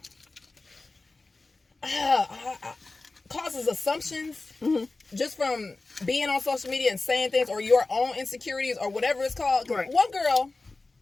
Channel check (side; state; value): right; quieter; 3.4 dB